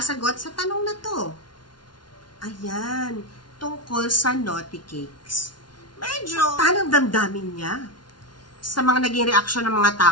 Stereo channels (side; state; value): right; late; 0.70 ms